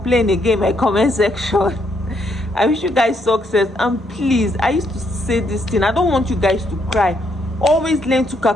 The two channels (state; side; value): normal; both; correlation 0.74